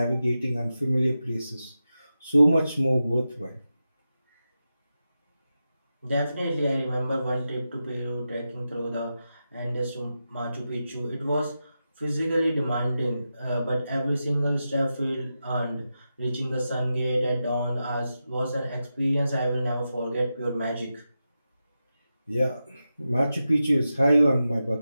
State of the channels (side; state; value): both; inverted; correlation -0.90